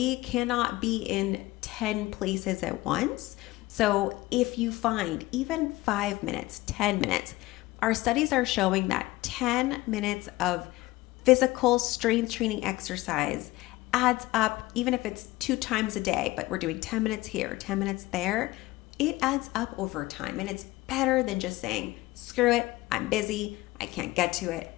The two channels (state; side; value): quieter; right; 18.8 dB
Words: cannot be in 10 places at once. So if you find even 5 minutes, 10 minutes, our studies are showing that 10 minutes of physical strength training exercise adds up, even if it's 2 times a day, but we're doing 10 minutes here, 10 minutes there, it adds up over time. And it's better than just saying, screw it, I'm busy, I can't get to it